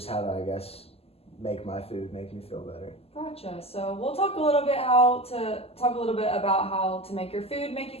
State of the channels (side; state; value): right; late; 0.29 ms